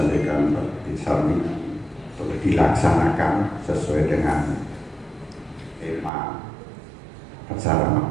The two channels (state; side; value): drops out; left; at 6.1 s